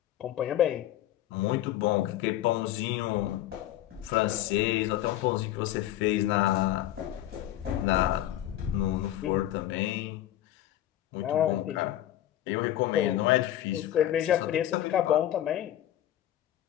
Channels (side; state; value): right; quieter; 13.0 dB